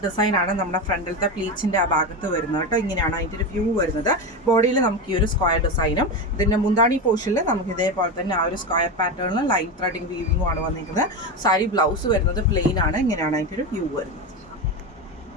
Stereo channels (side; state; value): both; normal; correlation 0.18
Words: ഡിസൈൻ ആണ് നമ്മുടെ ഫ്രണ്ടിലത്തെ പ്ലീറ്റ്സിൻ്റെ ആ ഭാഗത്ത് വരുന്നത് കേട്ടോ. ഇങ്ങനെയാണ് അതിൻ്റെ ഒരു വ്യൂ വരുന്നത്. ബോഡിയിൽ നമുക്ക് ഈ ഒരു സ്ക്വയർ ഡിസൈനും ഇതിൻ്റെ മുന്താണി പോർഷനിൽ നമുക്ക് ഇതേപോലെ തന്നെ ആ ഒരു സ്ക്വയർ പാറ്റേണിൽ ലൈൻ ത്രെഡിങ് വീവിങ്ങും ആണ് വന്നിരിക്കുന്നത്. സാരി ബ്ലൗസ് വരുന്നത് പ്ലെയിൻ ആണ്. ഇങ്ങനെയാണ് അതിൻ്റെ ഒരു വ്യൂ വരുന്നത്.